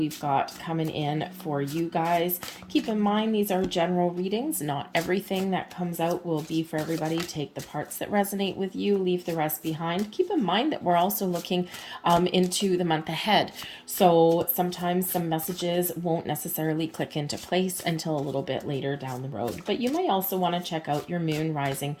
got coming in for you guys. Keep in mind, these are general readings. Not everything that comes out will be for everybody. Take the parts that resonate with you, leave the rest behind. Keep in mind that we're also looking into the month ahead. So sometimes some messages won't necessarily click into place until a little bit later down the road. But you may also want to check out your moon, rising,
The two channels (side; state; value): both; identical; correlation 1.00